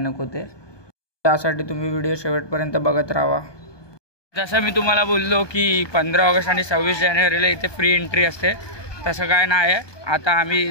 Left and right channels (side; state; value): right; late; 1.2 ms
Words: ते. त्यासाठी तुम्ही व्हिडिओ शेवटपर्यंत बघत राहा. जसं मी तुम्हाला बोललो की 15 ऑगस्ट आणि 26 जानेवारीला इथे फ्री एंट्री असते. तसं काय नाही आहे. आता आम्ही